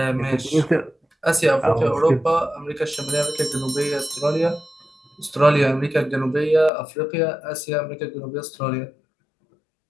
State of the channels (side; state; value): right; drops out; at 6.7 s